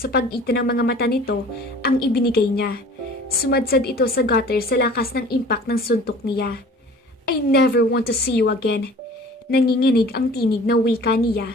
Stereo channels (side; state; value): both; normal; correlation 0.46